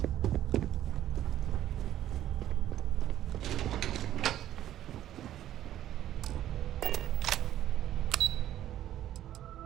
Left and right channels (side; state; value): left; quieter; 12.3 dB